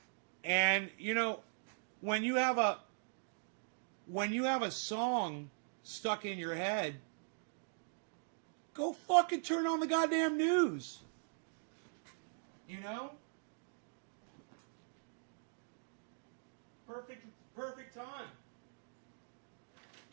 And you know, when you have a song stuck in your head, go fucking turn on the goddamn news. You know? Perfect time.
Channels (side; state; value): left; silent; digital silence